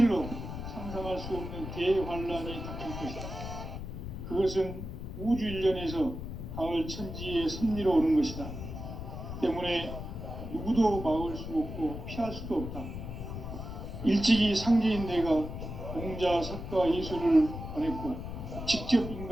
상상할 수 없는 대환란이 닥칠 것이다. 그것은 우주 일련에서 가을 천지의 섭리로 오는 것이다. 때문에 누구도 막을 수 없고 피할 수도 없다. 일찍이 상제인 내가 공자, 석가, 예술을 보냈고 직접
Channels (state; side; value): noise; left; rumble, 8 dB below the sound